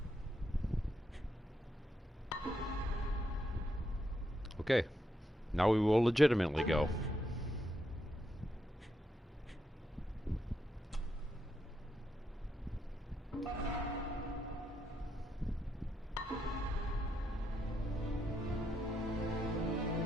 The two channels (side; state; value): both; normal; correlation 0.81